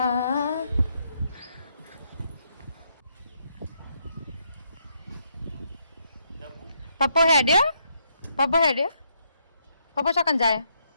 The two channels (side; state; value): both; inverted; correlation -0.75